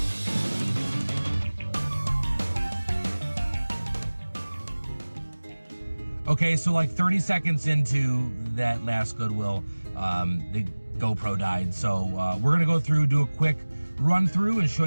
Okay, so like 30 seconds into that last Goodwill, the GoPro died. So we're gonna go through, do a quick run through and show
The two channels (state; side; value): inverted; both; correlation -1.00